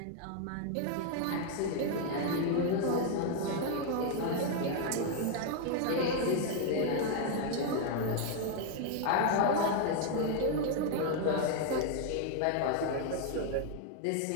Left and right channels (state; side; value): different; both; correlation 0.00